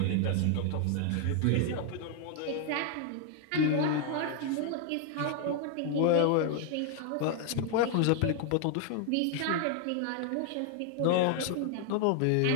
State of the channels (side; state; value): both; different; correlation 0.00